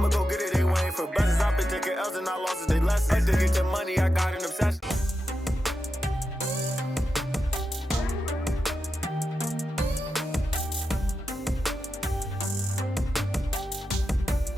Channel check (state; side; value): normal; both; correlation 0.89